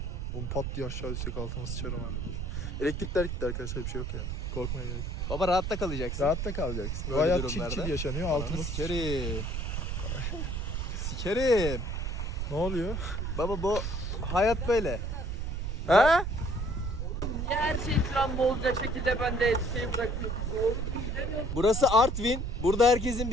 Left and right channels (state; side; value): noise; right; rumble, 3 dB below the sound